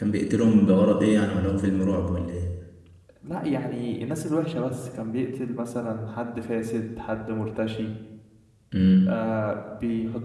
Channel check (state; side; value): identical; both; correlation 1.00